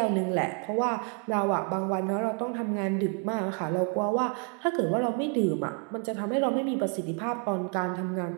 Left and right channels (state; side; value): quieter; left; 38.1 dB